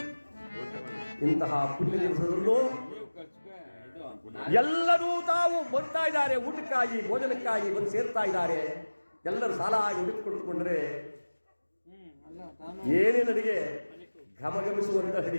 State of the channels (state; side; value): inverted; both; correlation -1.00